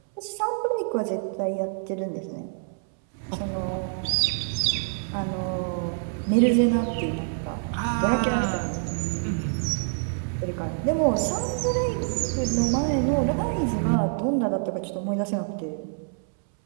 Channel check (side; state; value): left; silent; 61 dB below the other